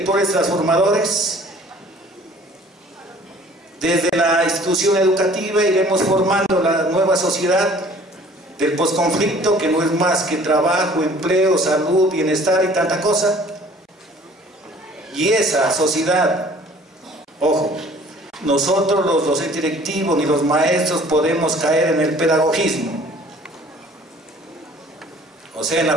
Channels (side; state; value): both; normal; correlation 0.52